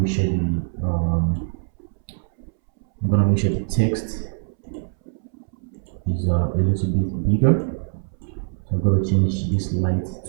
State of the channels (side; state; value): left; silent; 63 dB below the other